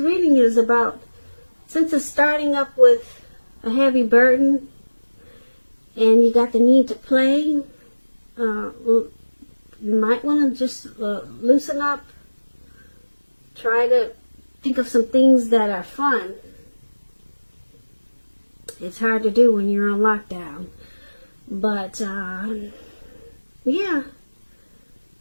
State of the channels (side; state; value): both; inverted; correlation -1.00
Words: is about, since it's starting up with a heavy burden and you got the need to play, you might want to just loosen up. Try to think of some things that are fun. It's hard to do when you're on lockdown. But, yeah.